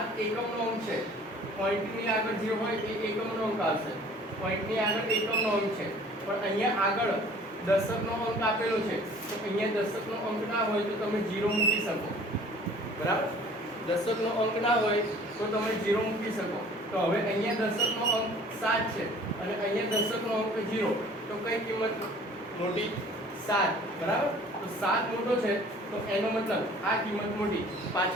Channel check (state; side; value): normal; both; correlation 0.50